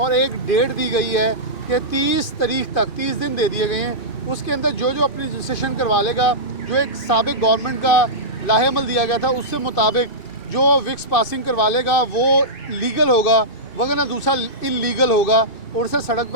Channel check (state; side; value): late; right; 2.5 ms